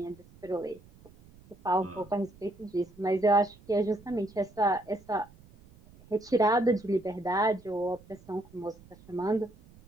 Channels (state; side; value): noise; right; rumble, 24 dB below the sound